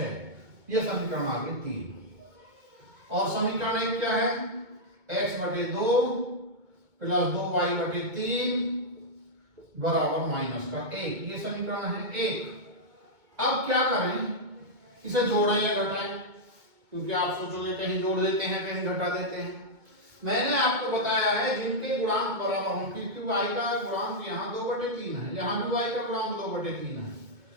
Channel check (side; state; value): left; late; 2.2 ms